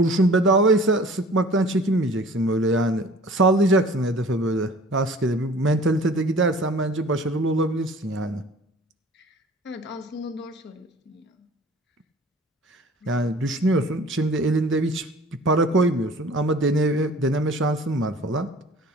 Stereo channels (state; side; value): normal; both; correlation 0.47